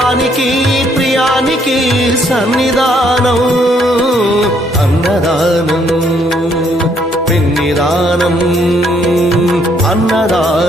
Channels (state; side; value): normal; both; correlation 0.68